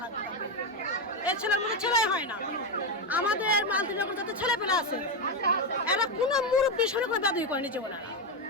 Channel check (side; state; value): both; normal; correlation 0.08